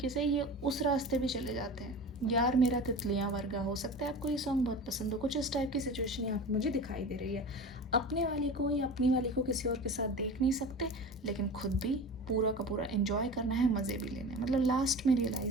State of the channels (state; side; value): normal; both; correlation 0.33